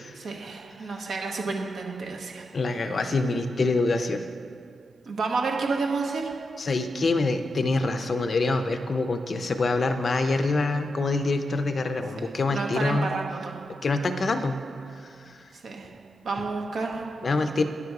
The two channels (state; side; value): normal; both; correlation 0.87